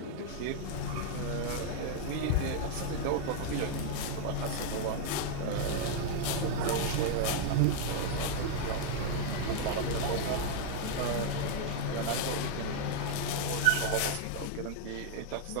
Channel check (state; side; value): different; both; correlation 0.00